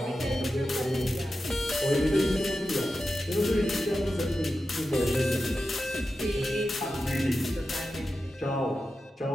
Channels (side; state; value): both; normal; correlation 0.91